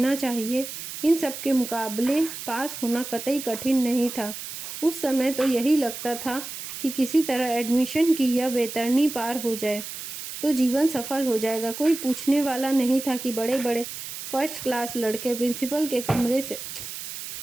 चाहिए, इन सब के मुकाबले पास होना कतई कठिन नहीं था। उस समय तो यही लगता था कि किसी तरह एडमिशन की यह वैतरणी पार हो जाए तो जीवन सफल हो जाएगा। कोई पूछने वाला नहीं था कि बड़े बड़े फर्स्ट क्लास लड़के प्रिंसिपल के कमरे से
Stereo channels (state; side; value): noise; right; hiss, 9 dB below the sound